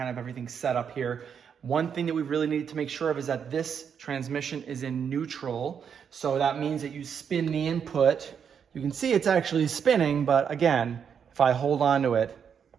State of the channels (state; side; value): quieter; left; 7.4 dB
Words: of everything set up here. One thing that we really need to make sure of is that this transmission is in neutral. So that means that you spin the input. You can see it's actually spinning, but again, if I hold on to it,